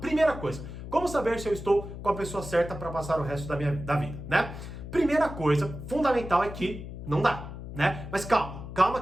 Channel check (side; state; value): left; noise; hum, 10 dB below the sound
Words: coisa, como saber se eu estou com a pessoa certa para passar o resto da vida, né? Primeira coisa fundamental é que não dá, né? Mas calma